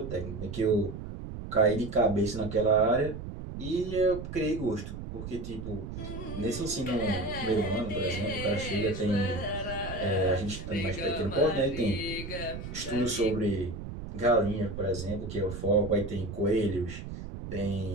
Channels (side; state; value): right; noise; rumble, 8 dB below the sound